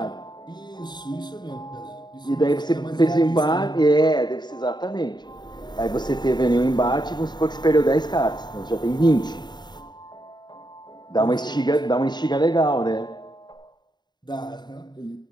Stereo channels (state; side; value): late; right; 0.21 ms